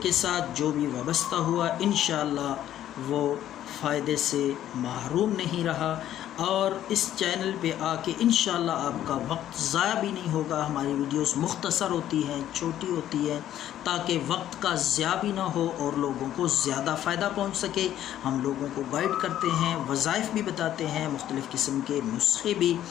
کے ساتھ جو بھی وابستہ ہوا انشاءاللہ وہ فائدے سے محروم نہیں رہا، اور اس چینل پہ آ کے انشاءاللہ آپ کا وقت ضائع بھی نہیں ہوگا۔ ہماری ویڈیوز مختصر ہوتی ہیں، چھوٹی ہوتی ہیں، تاکہ وقت کا ضیاع بھی نہ ہو اور لوگوں کو زیادہ فائدہ پہنچ سکے۔ ہم لوگوں کو گائیڈ کرتے ہیں، وظائف بھی بتاتے ہیں، مختلف قسم کے نسخے بھی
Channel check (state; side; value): quieter; right; 11.9 dB